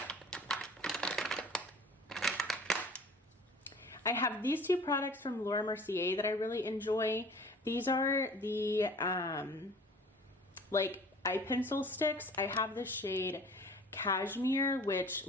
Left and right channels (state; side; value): normal; both; correlation 0.47